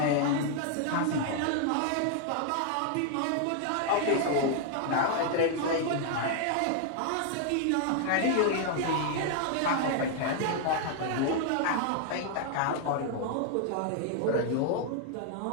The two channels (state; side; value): different; both; correlation 0.00